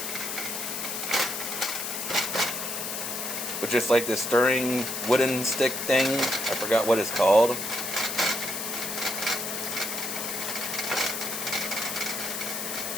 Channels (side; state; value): left; noise; hiss, 4 dB below the sound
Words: with just like this stirring wooden stick thing. I forgot what it's called.